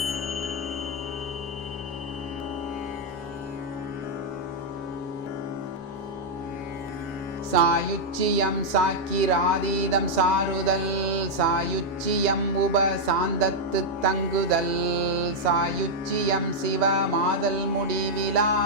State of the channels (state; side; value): normal; both; correlation -0.02